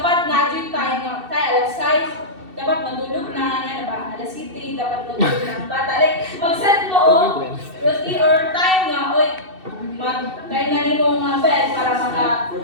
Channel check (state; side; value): late; left; 2.7 ms